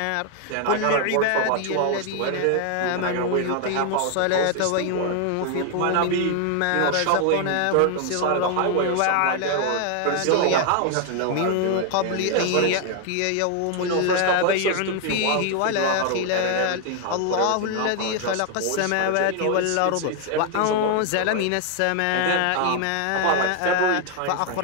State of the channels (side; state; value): both; different; correlation 0.00